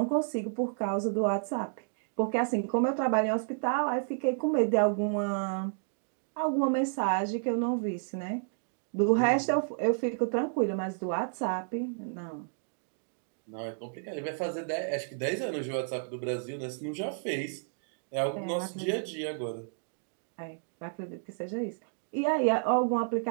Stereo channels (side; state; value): left; silent; digital silence